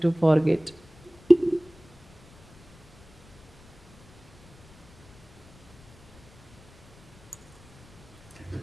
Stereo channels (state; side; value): noise; left; rumble, 24 dB below the sound